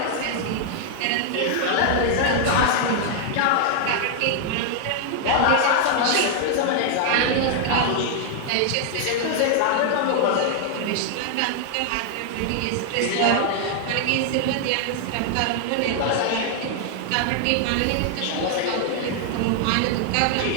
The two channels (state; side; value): different; both; correlation 0.00